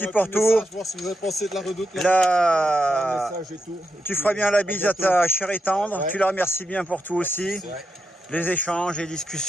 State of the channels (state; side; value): normal; both; correlation 0.85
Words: pour tout. Voir si vous avez pensé de la redoute. Là, Et tout. tu feras bien la bise à ta chère et tendre. Ouais. Tu la remercies bien pour tout aussi. Ouais. Les échanges, les